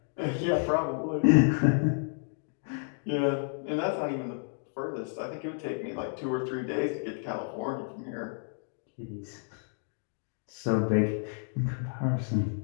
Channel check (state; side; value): silent; right; 57 dB below the other